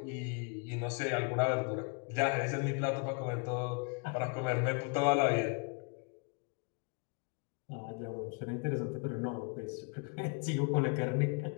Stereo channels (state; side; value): quieter; right; 35.3 dB